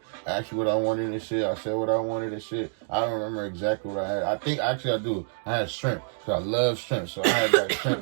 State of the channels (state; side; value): silent; left; digital silence